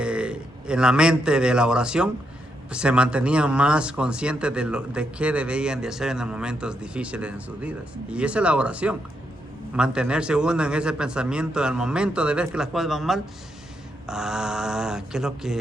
la mente de la oración, se mantenían más conscientes de qué debían de hacer en los momentos difíciles en sus vidas. Y esa es la oración. Mantenerse uno en ese pensamiento al momento de ver que las cosas van mal. ¿Qué es lo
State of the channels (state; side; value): normal; both; correlation 0.80